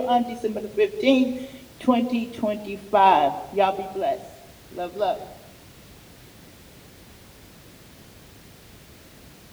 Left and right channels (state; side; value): identical; both; correlation 1.00